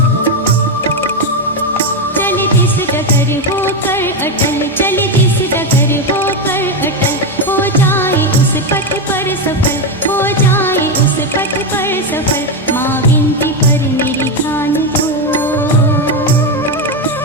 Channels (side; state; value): both; normal; correlation 0.09